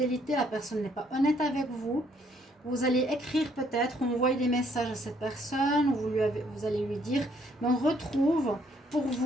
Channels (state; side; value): normal; both; correlation 0.67